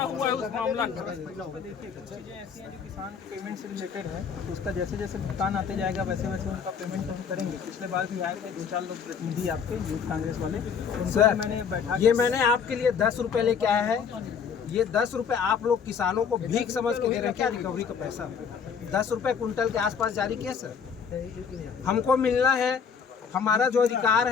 है उस मामला का? देखिए कुछ चीज़ें ऐसी हैं जो किसान पेमेंट से रिलेटेड है, तो उसका जैसे जैसे भुगतान आते जाएगा वैसे वैसे उनका पेमेंट तो हम करेंगे। पिछले बार भी आए थे 2-4 लोग प्रतिनिधि आपके यूथ कांग्रेस वाले, उनसे मैंने बैठा ये मैंने आपके लिए 10 रुपए लेके आया है। ये 10 रुपए आप लोग किसानों को भीख समझ के दे रहे हैं क्या? रिकवरी का पैसा 10 रुपए कुंटल के आसपास जारी किया सर। हमको मिलना है, हमारा जो अधिकार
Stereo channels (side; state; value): right; quieter; 6.6 dB